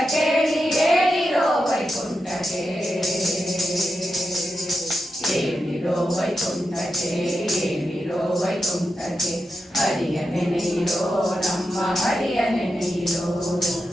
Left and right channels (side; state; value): both; normal; correlation 0.88